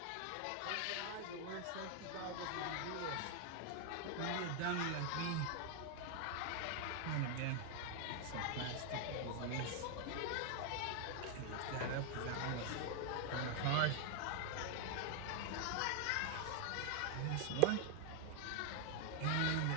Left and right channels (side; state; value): both; different; correlation 0.01